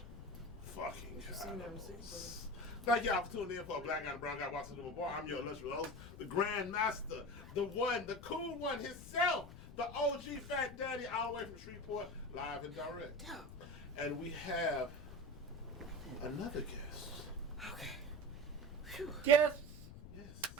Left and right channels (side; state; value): left; noise; rumble, 14 dB below the sound